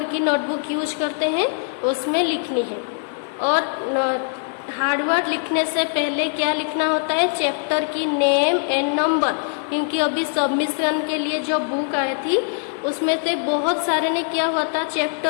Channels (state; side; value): silent; right; 64 dB below the other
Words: की नोटबुक यूज करते हैं, उसमें लिखनी है। और हार्ड वर्ड लिखने से पहले क्या लिखना होता है, चैप्टर की नेम एंड नंबर, क्योंकि अभी सबमिशन के लिए जो बुक आई थी उसमें से बहुत सारे ने क्या हुआ था,